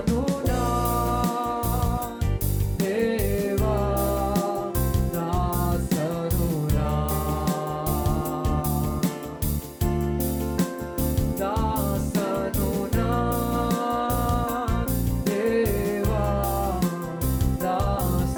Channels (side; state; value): both; identical; correlation 1.00